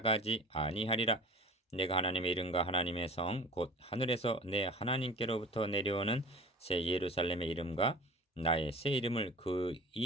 아니하리라. 내가 하나님의 이름과 하나님의 성 곧 하늘에서 내 하나님께로부터 내려오는 새 예루살렘의 이름과 나의 새 이름을 그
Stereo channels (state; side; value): normal; both; correlation 0.40